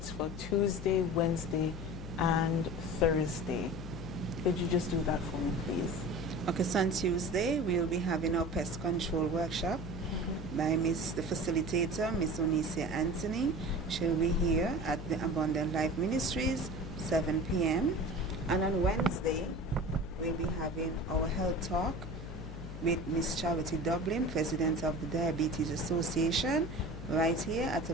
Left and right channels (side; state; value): left; noise; hum, 10 dB below the sound